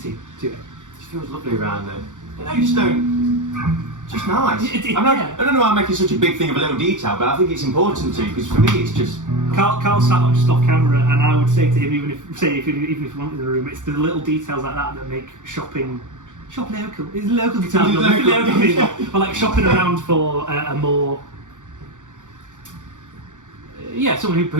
to it. It feels lovely around there. I just don't. Just nice. I don't know why I'm making such a big thing of a little detail, but I think it's important to, because for me it's just. Carl sat up just off camera, and I would say to him, even if you want in the room, it's the little details like that make shopping local. It's local guitar. Local people. But like shopping around for a more. Someone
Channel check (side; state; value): left; late; 0.86 ms